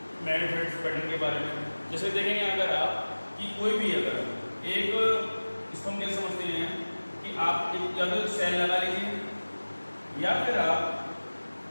मैग्नेटिक फील्ड्स पैटर्न के बारे में। जैसे देखेंगे अगर आप कि कोई भी अगर एक, इसको हम कैसे समझते हैं कि आप एक या तो सेल लगा लीजिए या फिर आप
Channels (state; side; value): inverted; both; correlation -1.00